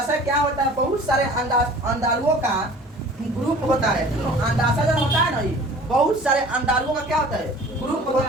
क्या होता है? बहुत सारे अंडालुओं का ग्रुप होता है, ठीक ना। अंडाशय जन होता है ना, बहुत सारे अंडालुओं का क्या होता है? ग्रुप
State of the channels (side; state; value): both; normal; correlation 0.46